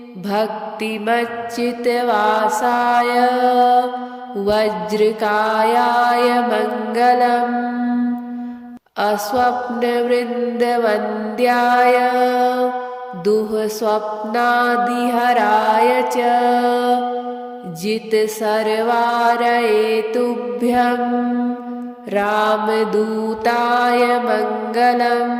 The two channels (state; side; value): identical; both; correlation 1.00